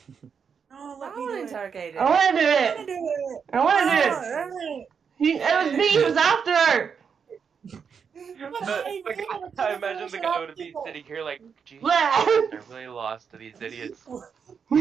No, I let me want do to it. interrogate I it. want to do I wanna it. do it. I want to do it. Oh, It was me who was after her. I imagine the guy would be sitting here like, Jesus Blah. Christ, I really lost to these idiots.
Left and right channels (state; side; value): quieter; left; 6.5 dB